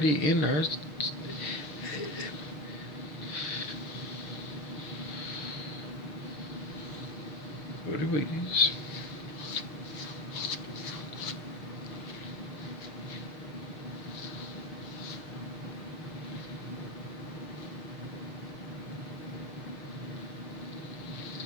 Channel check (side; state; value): right; late; 6.5 ms